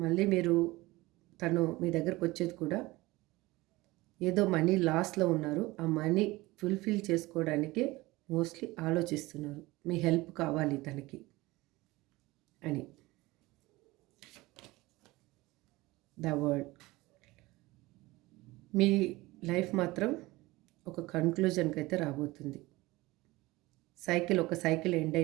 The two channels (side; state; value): left; quieter; 20.5 dB